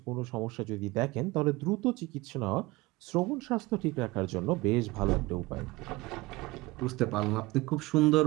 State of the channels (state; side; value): quieter; left; 21.2 dB